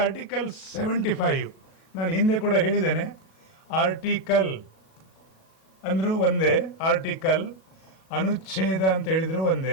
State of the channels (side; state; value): right; late; 37 ms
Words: ಆರ್ಟಿಕಲ್ 75 ನಾನು ಹಿಂದೆ ಕೂಡ ಹೇಳಿದ್ದೇನೆ. ಆರ್ಟಿಕಲ್ ಅಂದರೂ ಒಂದೇ, ಆರ್ಟಿಕಲ್ ಅನುಚ್ಛೇದ ಅಂತ ಹೇಳಿದ್ರು